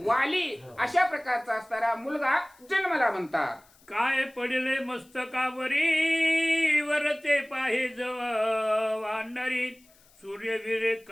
वाली अशा प्रकारचा असणारा मुलगा जन्मला म्हणतात. काय पडले मस्तकावरी वरते पाहे जव वानरी सूर्यवीरे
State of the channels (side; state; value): left; noise; hiss, 29 dB below the sound